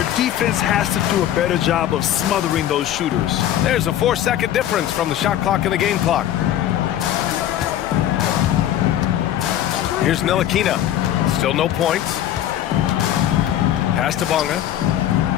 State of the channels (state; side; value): quieter; right; 11.7 dB